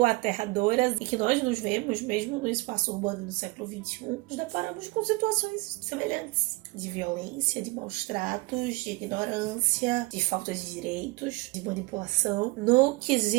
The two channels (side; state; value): left; quieter; 23.6 dB